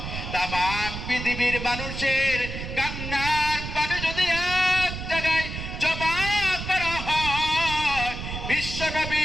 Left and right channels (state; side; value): noise; right; rumble, 7 dB below the sound